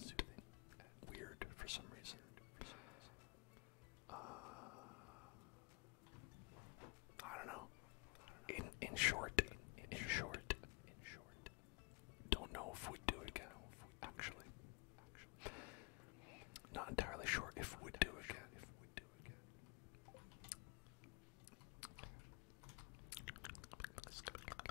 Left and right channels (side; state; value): right; quieter; 28.1 dB